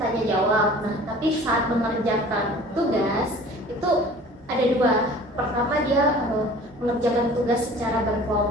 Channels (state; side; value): normal; both; correlation 0.46